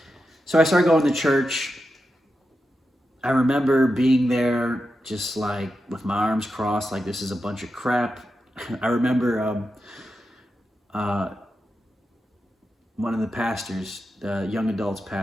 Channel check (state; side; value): normal; both; correlation 0.89